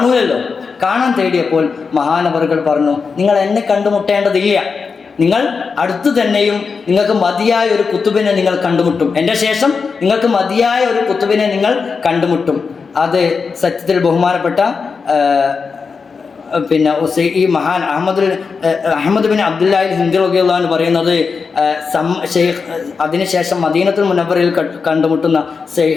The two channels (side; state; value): right; quieter; 5.2 dB